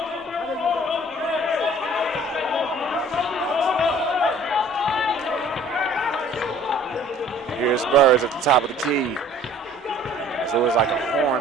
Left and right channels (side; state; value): both; normal; correlation 0.52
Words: Here's Burrs at the top of the key. So it looks like a